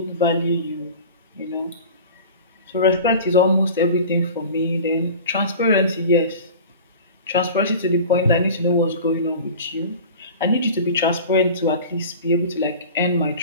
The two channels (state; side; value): inverted; both; correlation -0.38